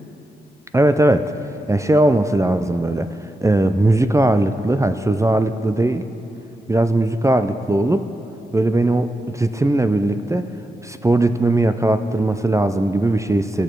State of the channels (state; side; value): normal; both; correlation 0.88